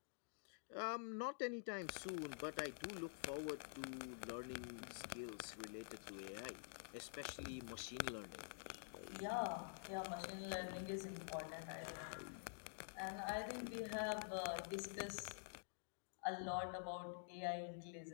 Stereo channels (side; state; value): right; silent; digital silence